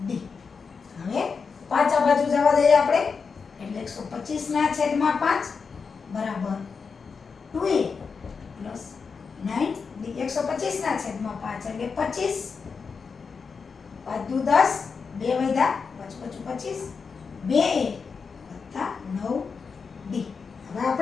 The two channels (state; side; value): quieter; right; 5.4 dB